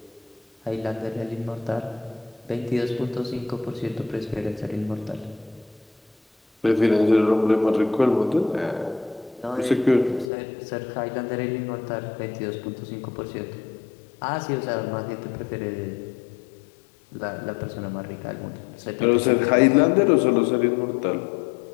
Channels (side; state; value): right; drops out; at 10.3 s